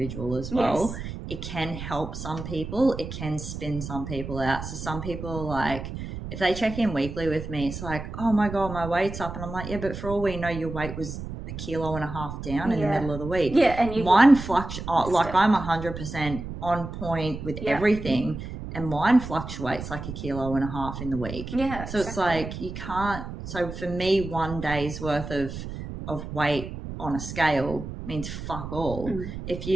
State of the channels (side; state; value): right; noise; rumble, 8 dB below the sound